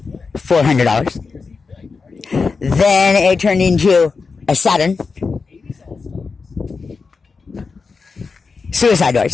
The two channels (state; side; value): quieter; right; 4.7 dB